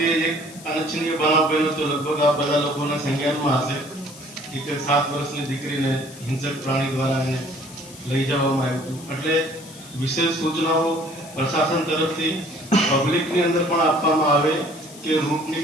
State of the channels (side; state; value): left; noise; hiss, 18 dB below the sound